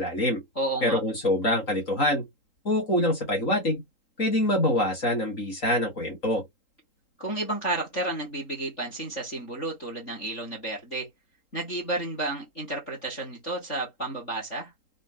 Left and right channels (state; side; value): late; right; 3.8 ms